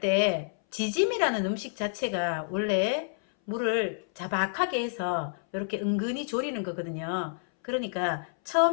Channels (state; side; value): silent; right; 59 dB below the other